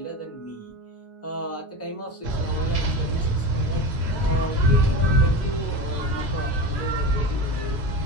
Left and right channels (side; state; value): both; normal; correlation 0.26